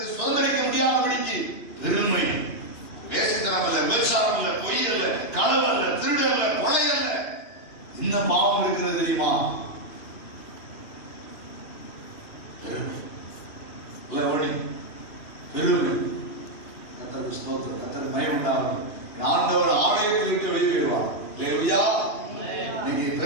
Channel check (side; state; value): right; late; 2.9 ms